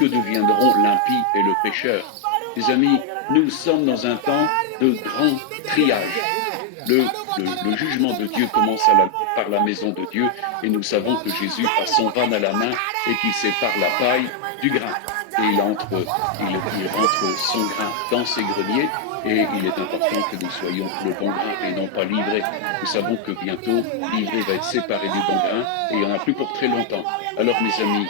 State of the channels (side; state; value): both; different; correlation 0.00